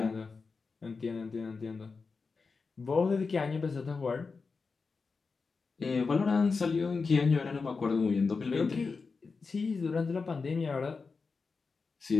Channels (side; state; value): right; quieter; 4.6 dB